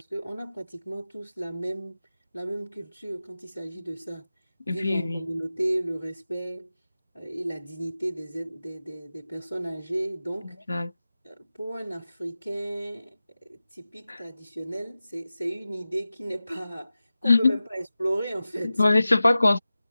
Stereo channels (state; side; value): inverted; both; correlation -0.95